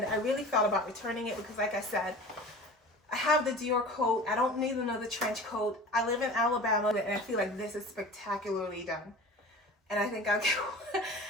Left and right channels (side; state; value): both; normal; correlation 0.39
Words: I really thought about returning it because, like I said, I have the Dior coat. I don't need another trench coat. I live in Alabama, and I feel like this is spectacularly done. And I think